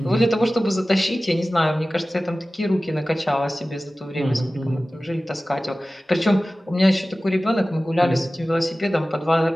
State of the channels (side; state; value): both; normal; correlation 0.96